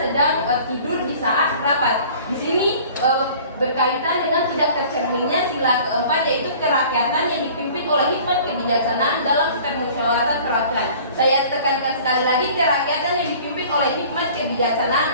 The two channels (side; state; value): both; inverted; correlation -0.48